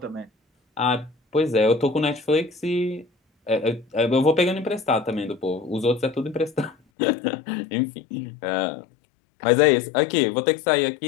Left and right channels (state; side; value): drops out; right; at 6.8 s